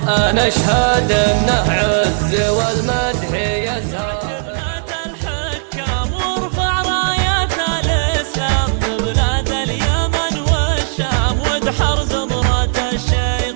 أنا أشهد أنه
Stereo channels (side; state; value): left; silent; digital silence